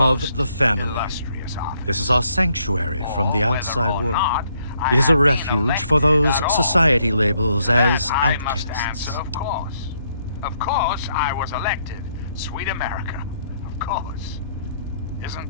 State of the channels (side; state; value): both; inverted; correlation -0.72